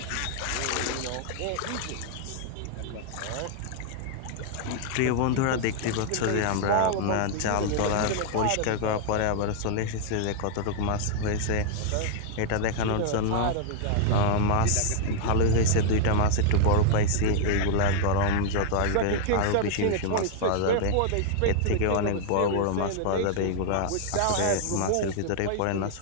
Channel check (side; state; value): both; different; correlation -0.01